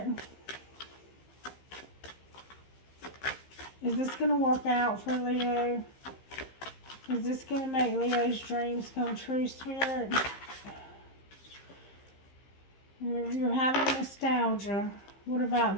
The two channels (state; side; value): late; right; 15 ms